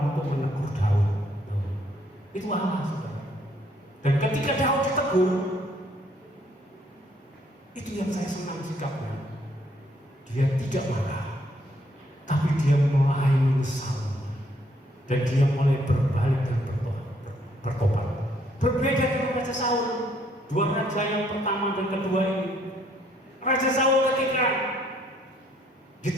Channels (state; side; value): normal; both; correlation 0.68